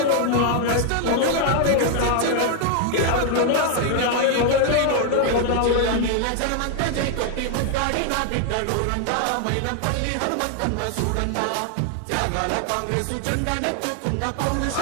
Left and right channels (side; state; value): both; different; correlation 0.00